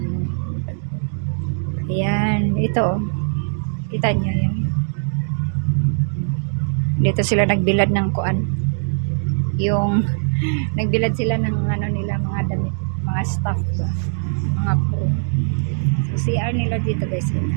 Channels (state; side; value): silent; left; digital silence